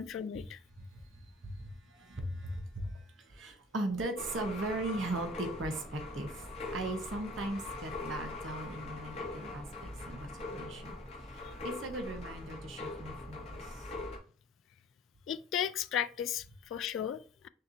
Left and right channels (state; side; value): normal; both; correlation 0.47